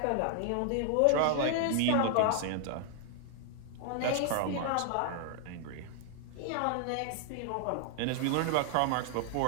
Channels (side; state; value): both; different; correlation -0.01